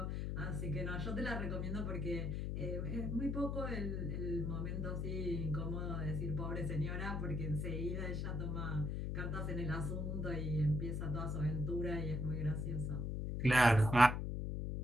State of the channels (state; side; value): noise; left; hum, 1 dB below the sound